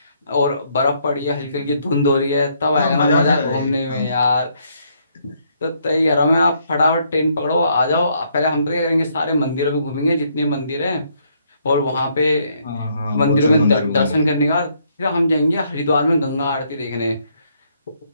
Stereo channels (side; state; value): both; inverted; correlation -0.71